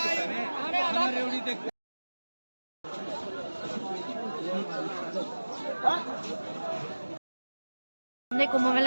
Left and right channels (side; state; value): both; inverted; correlation -1.00